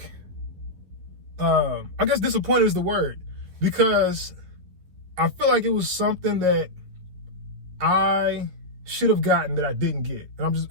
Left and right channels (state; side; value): late; left; 11 ms